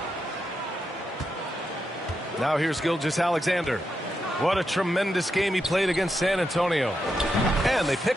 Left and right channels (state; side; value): normal; both; correlation 0.85